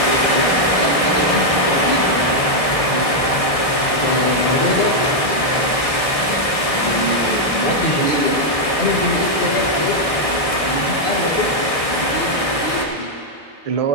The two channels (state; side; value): late; right; 1.6 ms